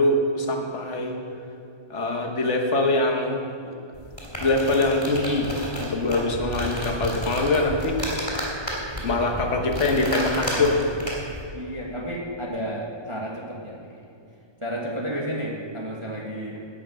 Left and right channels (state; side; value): late; left; 1.2 ms